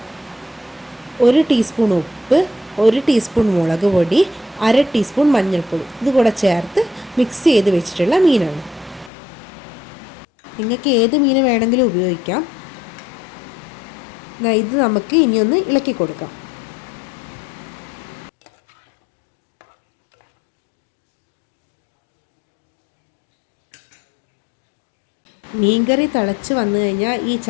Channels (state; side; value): drops out; right; at 9.1 s